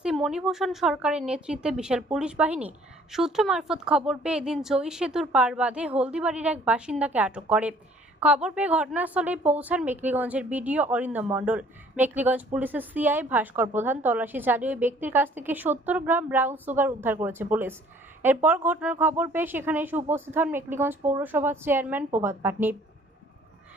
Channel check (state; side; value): normal; both; correlation 0.57